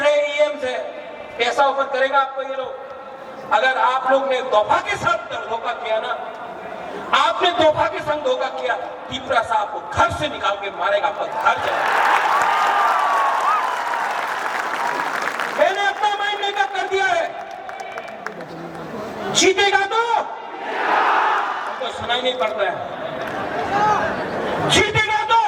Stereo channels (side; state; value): both; identical; correlation 1.00